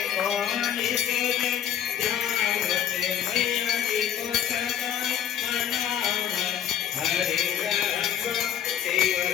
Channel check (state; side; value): quieter; right; 9.8 dB